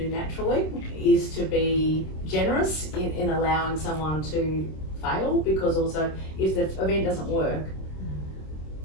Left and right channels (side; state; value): right; late; 26 ms